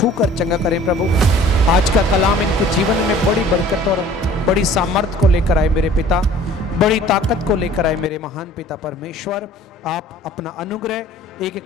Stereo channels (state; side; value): normal; both; correlation 0.50